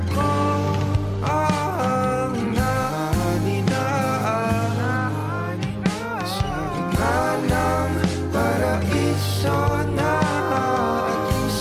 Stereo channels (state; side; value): identical; both; correlation 1.00